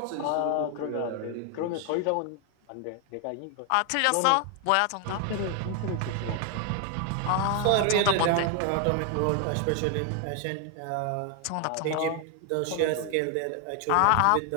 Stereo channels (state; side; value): different; both; correlation 0.00